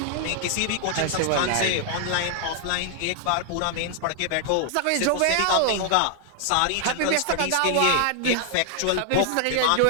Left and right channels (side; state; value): both; different; correlation 0.00